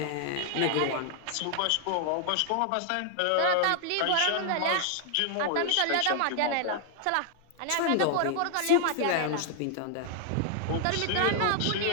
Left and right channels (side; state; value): both; different; correlation 0.00